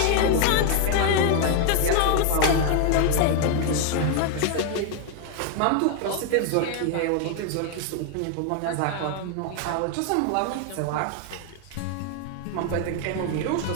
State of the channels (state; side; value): different; both; correlation 0.00